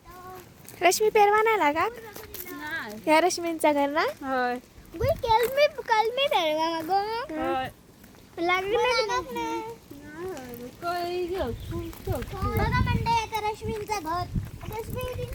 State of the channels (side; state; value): both; identical; correlation 1.00